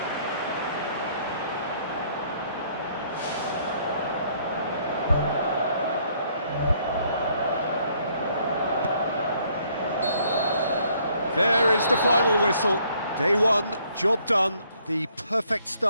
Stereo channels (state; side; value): inverted; both; correlation -0.66